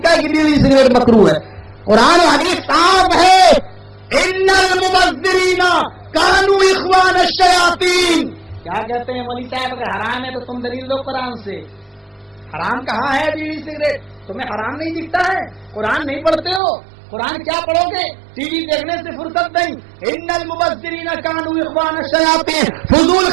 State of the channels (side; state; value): left; drops out; at 16.6 s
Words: ہے کہ بیڑی سگریٹ مکروہ ہے؟ قرآن و حدیث صاف ہے، ان المبذرین کانوا اخوان الشیاطین. کیا کہتے ہیں ولی صاحب؟ اگر حرام ہے تو تم دلیل دو قرآن سے. حرام کہاں ہے بیڑی سگریٹ؟ تمہیں حرام نہیں دکھتا ہے؟ قرآن نہیں پڑھتے ہو؟ قرآن کیا پڑھو گے؟ ٹی وی دیکھنے سے فرصت نہیں. ان المبذرین کانوا اخوان الشیاطین، فضول